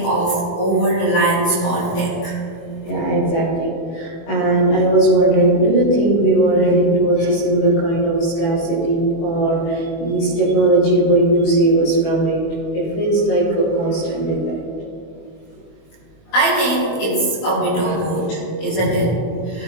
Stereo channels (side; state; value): right; late; 24 ms